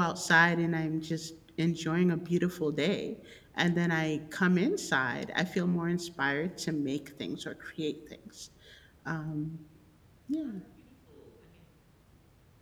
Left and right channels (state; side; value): identical; both; correlation 1.00